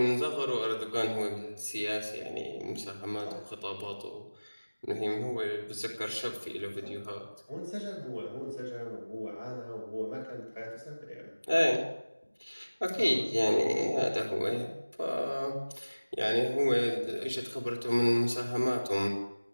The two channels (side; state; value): both; inverted; correlation -1.00